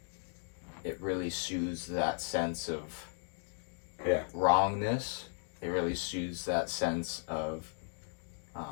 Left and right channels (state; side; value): silent; right; 54 dB below the other